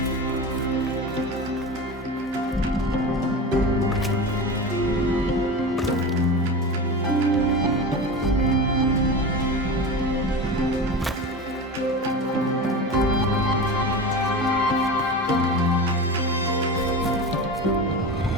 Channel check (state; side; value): normal; both; correlation 0.27